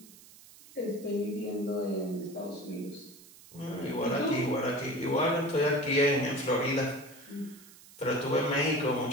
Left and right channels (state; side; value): noise; right; hiss, 21 dB below the sound